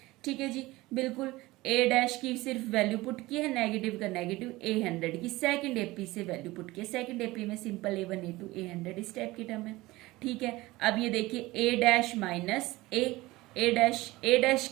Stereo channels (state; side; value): quieter; left; 19.7 dB